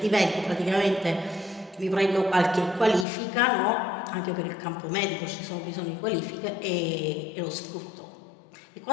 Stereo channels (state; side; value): drops out; right; at 3.1 s